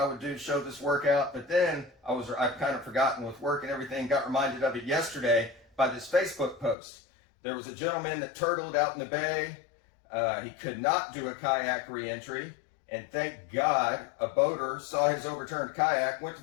would show this workout, but then I've kind of forgotten with work and everything, got reminded of it yesterday by this Facebook post. There was a gentleman that turtled out in the bay. He could not do a kayak reentry, and thank God a boater saw his overturned kayak, went to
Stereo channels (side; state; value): right; drops out; at 6.8 s